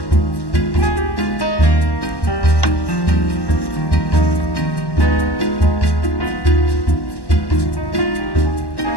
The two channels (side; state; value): right; late; 1.1 ms